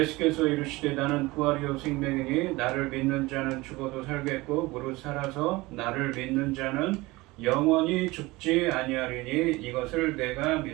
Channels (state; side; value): quieter; left; 21.3 dB